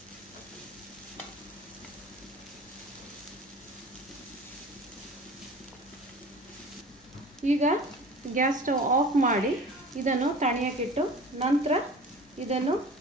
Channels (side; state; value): both; normal; correlation 0.41